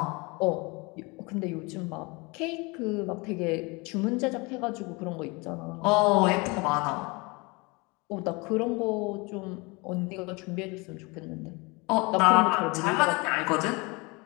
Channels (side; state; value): right; quieter; 27.1 dB